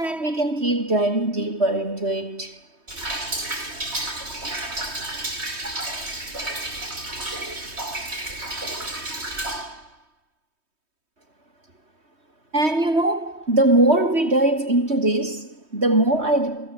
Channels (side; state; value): left; late; 3.2 ms